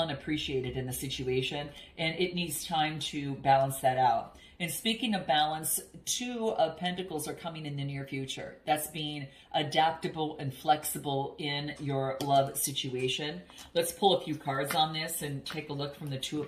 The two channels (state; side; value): identical; both; correlation 1.00